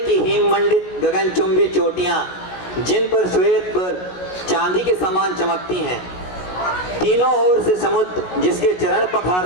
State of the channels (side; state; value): right; late; 16 ms